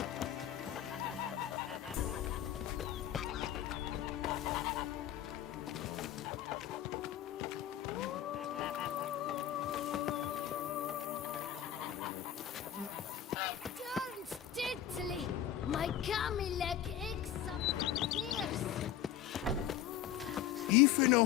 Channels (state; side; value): quieter; right; 10.8 dB